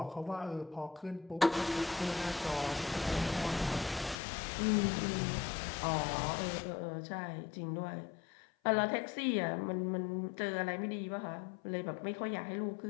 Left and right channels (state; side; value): drops out; right; at 4.2 s